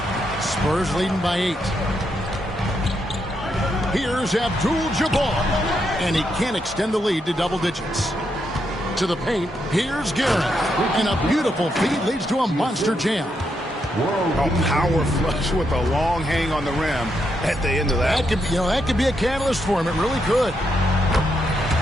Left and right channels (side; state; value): both; normal; correlation 0.80